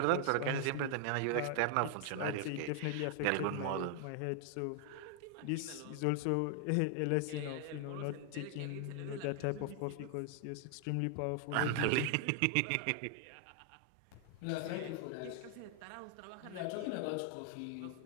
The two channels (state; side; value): different; both; correlation 0.00